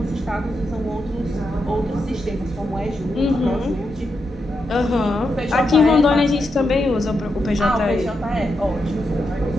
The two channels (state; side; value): normal; both; correlation 0.85